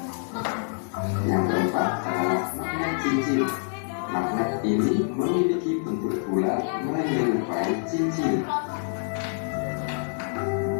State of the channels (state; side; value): silent; right; 61 dB below the other